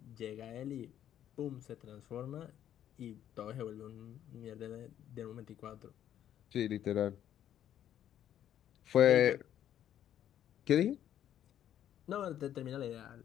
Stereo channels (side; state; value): right; quieter; 10.8 dB